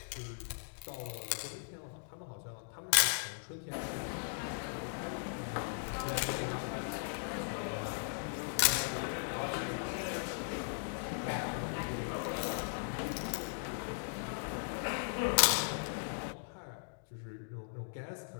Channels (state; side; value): silent; right; digital silence